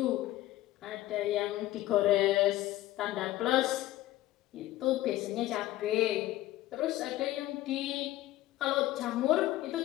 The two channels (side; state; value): right; quieter; 15.6 dB